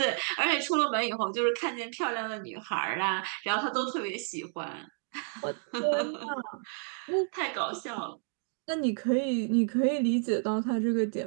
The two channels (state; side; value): silent; left; 57 dB below the other